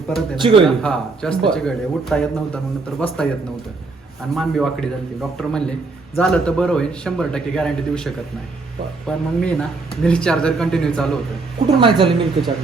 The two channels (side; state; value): left; quieter; 3.8 dB